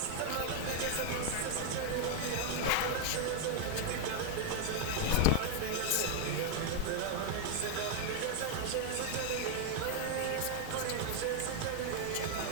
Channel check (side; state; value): both; different; correlation 0.00